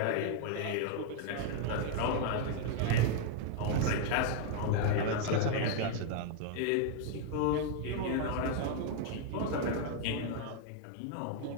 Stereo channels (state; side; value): different; both; correlation 0.00